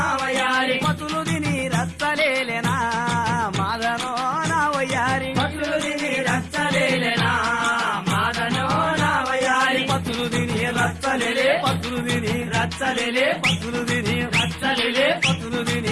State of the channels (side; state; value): both; identical; correlation 1.00